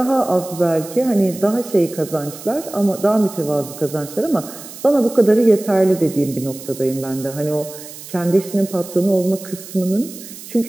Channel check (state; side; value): noise; right; hiss, 15 dB below the sound